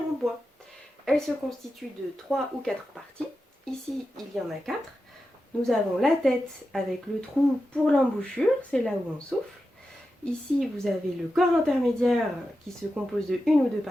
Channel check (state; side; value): normal; both; correlation 0.90